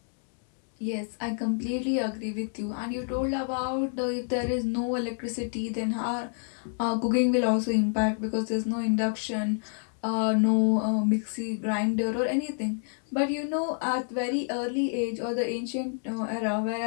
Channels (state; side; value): silent; right; 58 dB below the other